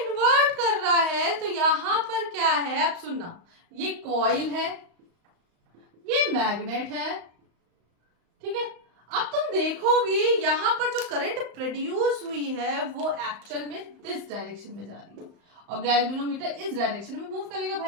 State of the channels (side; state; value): left; late; 35 ms